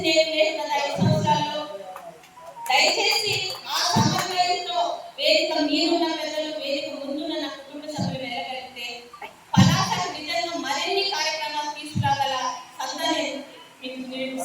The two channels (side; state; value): both; identical; correlation 1.00